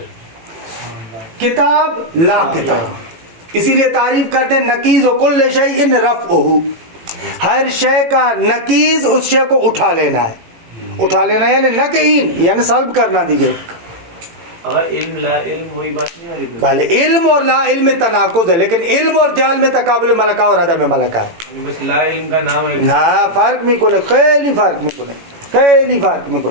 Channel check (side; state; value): left; late; 18 ms